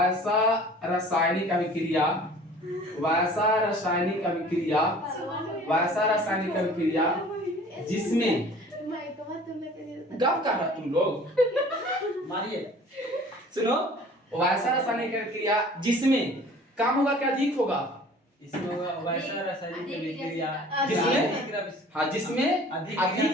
रासायनिक अभिक्रिया जिसमें गप कर रहा तुम लोग, मारिए। सुनो, वैसा रासायनिक अभिक्रिया जिसमें कम होगा क्या अधिक होगा? इसमें होगा वैसा रासायनिक अभिक्रिया हाँ जिसमें अधिक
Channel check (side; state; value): both; normal; correlation 0.47